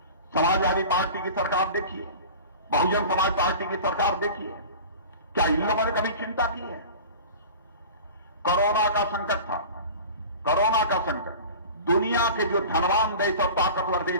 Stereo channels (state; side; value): inverted; both; correlation -0.38